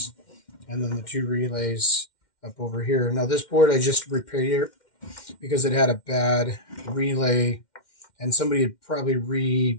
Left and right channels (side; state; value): right; late; 2.1 ms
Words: and then the two relays up over here. Now this board I just repaired because it had a bad relay, and somebody had probably